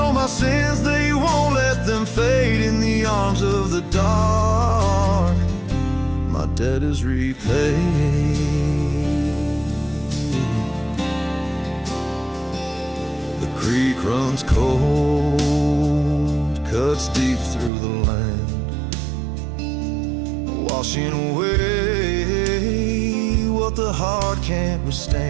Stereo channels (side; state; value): left; drops out; at 17.7 s